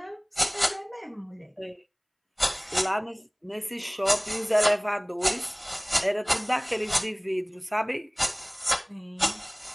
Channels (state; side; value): identical; both; correlation 1.00